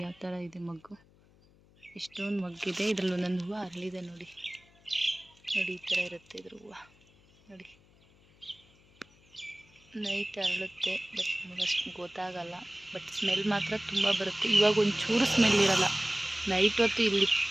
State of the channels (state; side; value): noise; left; hum, 29 dB below the sound